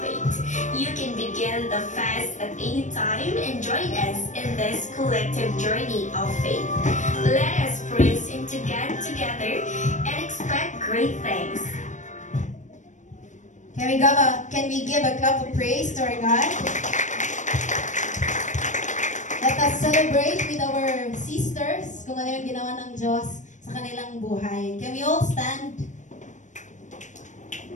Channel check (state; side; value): late; right; 0.35 ms